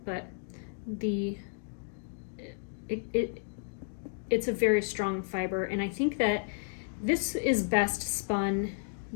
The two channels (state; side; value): silent; right; digital silence